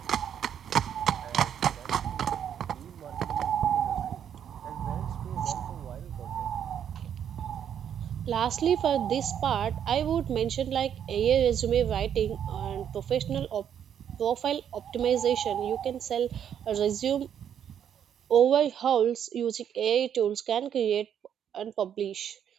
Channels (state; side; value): quieter; left; 9.0 dB